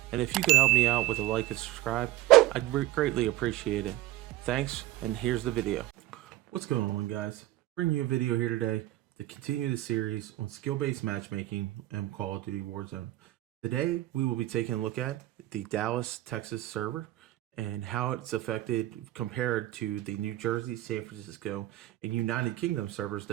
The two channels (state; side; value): quieter; left; 16.0 dB